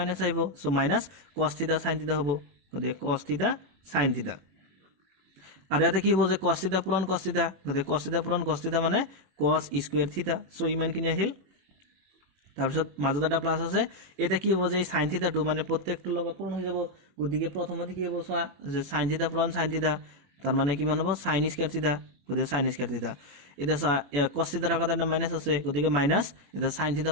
আহিব সো মাইনাস cos θ sin θ হ'ব গতিকে cos θ sin θ আৰু এটা কি হ'ব যে cos θ পূৰণ cos θ গতিকে cos θ পূৰণ cos θ মানে cos স্কয়াৰ θ সো ইমানখিনি আহিল তাৰ পিছত মাজত এটা প্লাস আছে এটা কি হ'ব যে sin θ টো মানে প্ৰত্যেকটো লগত পূৰণ হৈ যাব গতিকে প্ৰথমতে কি হ'ব সোৱা যে sin θ পূৰণ sin θ তাৰ মানে কিমান হ'ব sin স্কয়াৰ θ গতিকে sin স্কয়াৰ θ এটা cos θ আগত এটা মাইনাস আছে গতিকে মাইনাস এটা sin θ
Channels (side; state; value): left; late; 21 ms